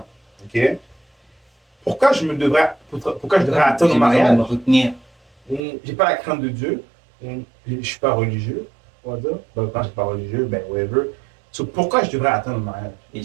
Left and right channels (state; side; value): drops out; left; at 5.6 s